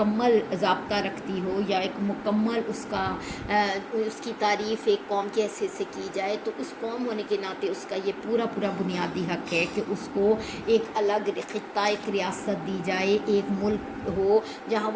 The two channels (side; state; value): both; identical; correlation 1.00